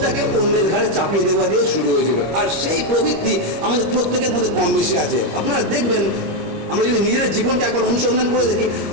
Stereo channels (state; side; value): late; left; 25 ms